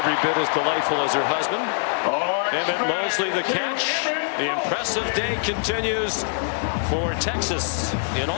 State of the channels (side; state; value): right; silent; digital silence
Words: bit as delightful as her husband. Emmett Mosley the catch. The impressive day continues for Texas in